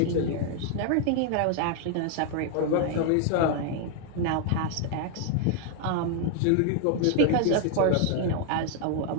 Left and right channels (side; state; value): both; different; correlation 0.00